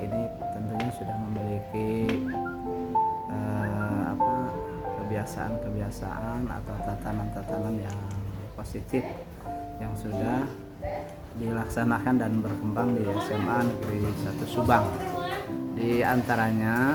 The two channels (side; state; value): both; identical; correlation 1.00